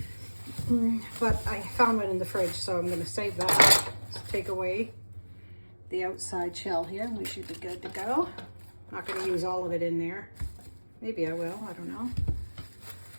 But I found one in the fridge, so I'm going to save that. Let's take away the outside shell here. We should be good to go. Not going to use all of it in there. Maybe I will. I don't know.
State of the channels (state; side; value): inverted; both; correlation -1.00